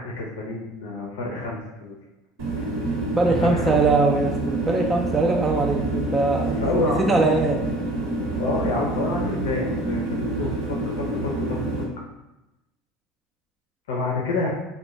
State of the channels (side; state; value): both; normal; correlation 0.47